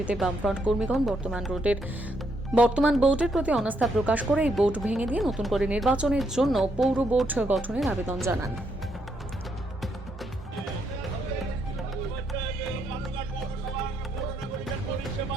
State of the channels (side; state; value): both; normal; correlation 0.76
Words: বামফ্রন্ট কর্মীগণ বর্তমান বোর্ডের প্রতি অনাস্থা প্রকাশ করে এই বোর্ড ভেঙে দিয়ে নতুন করে নির্বাচনের জন্য পৌর বোর্ড গঠনের আবেদন জানান।